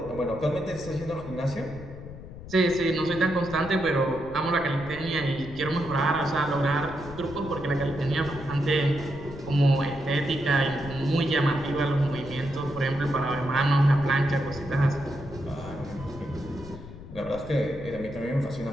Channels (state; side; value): noise; left; rumble, 14 dB below the sound